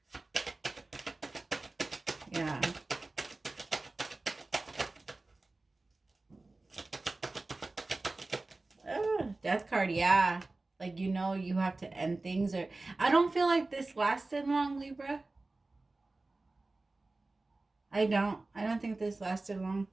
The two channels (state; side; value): quieter; left; 3.2 dB